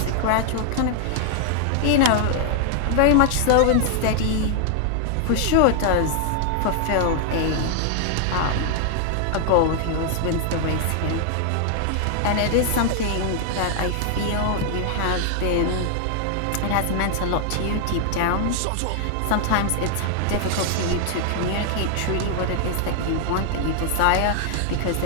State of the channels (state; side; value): different; both; correlation 0.00